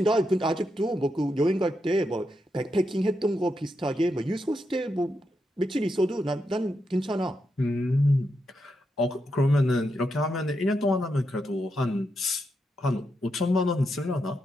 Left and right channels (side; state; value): both; normal; correlation 0.84